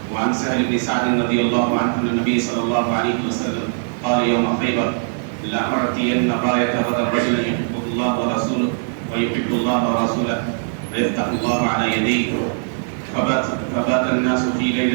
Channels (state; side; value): silent; left; 66 dB below the other